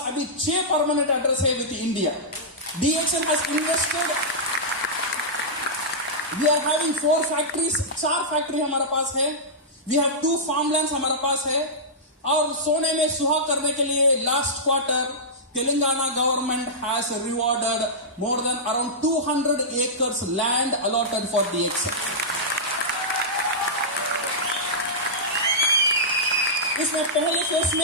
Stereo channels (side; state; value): both; normal; correlation -0.12